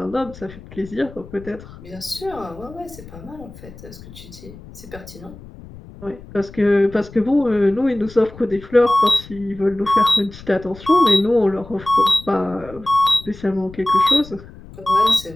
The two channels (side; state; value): left; noise; rumble, 18 dB below the sound